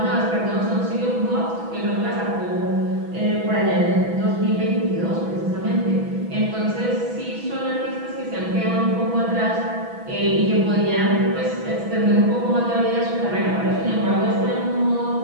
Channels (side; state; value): left; late; 6.1 ms